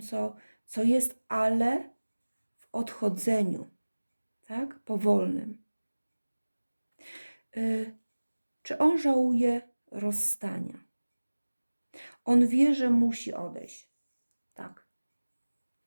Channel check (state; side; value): inverted; both; correlation -1.00